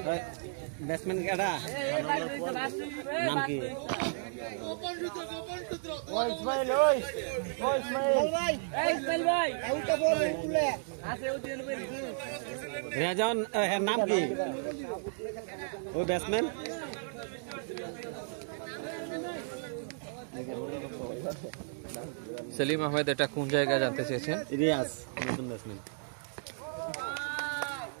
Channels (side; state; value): left; silent; digital silence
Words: ব্যাটসম্যান কেটা নাম কি? রেজন, নাম কি ওই ব্যাটসম্যান? সেলিম আহমেদ এটা কোন জায়গায় জানতে চেয়েছেন? রিয়াজ, নতুন ব্যাটসম্যান।